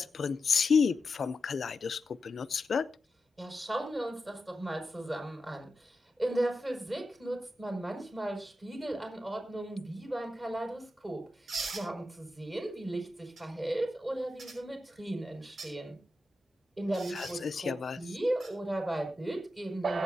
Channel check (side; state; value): both; normal; correlation 0.90